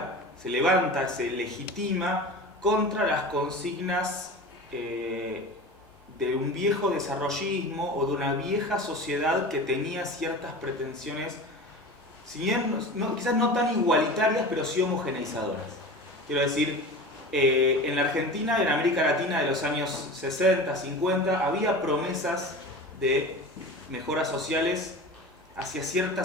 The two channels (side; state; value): both; normal; correlation 0.33